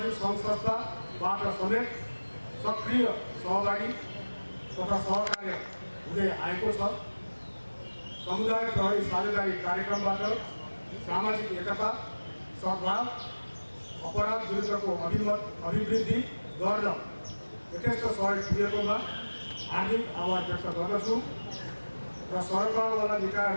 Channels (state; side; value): inverted; both; correlation -1.00